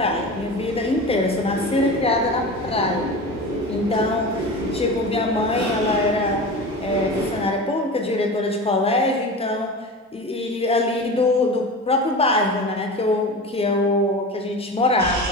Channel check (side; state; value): both; normal; correlation 0.30